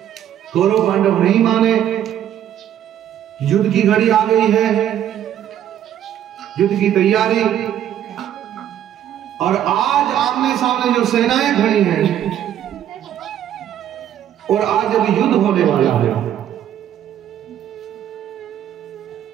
कौरव पांडव नहीं माने, युद्ध की घड़ी आ गई है, युद्ध की तैयारी, और आज आमने सामने जो सेनाएं खड़ी हैं, और आज अभी युद्ध होने वाला है।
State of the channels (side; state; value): left; quieter; 10.7 dB